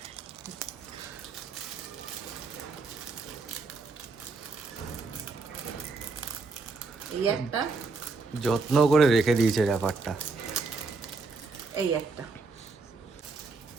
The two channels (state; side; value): quieter; left; 4.0 dB